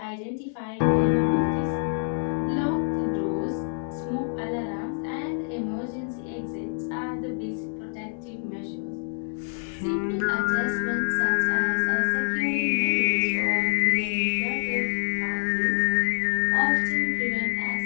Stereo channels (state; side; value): silent; right; digital silence